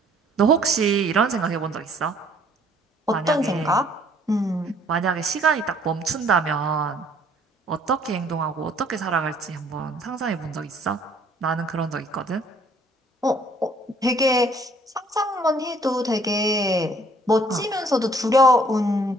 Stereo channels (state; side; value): normal; both; correlation 0.59